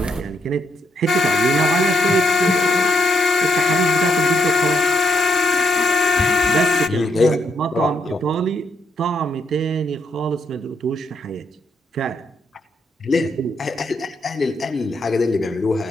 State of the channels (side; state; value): both; normal; correlation 0.77